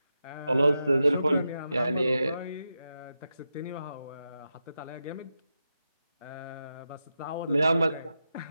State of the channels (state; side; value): inverted; both; correlation -0.89